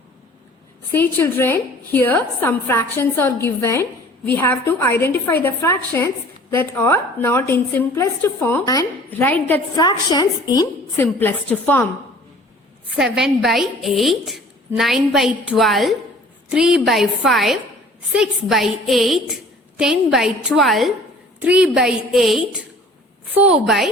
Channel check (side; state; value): both; normal; correlation 0.49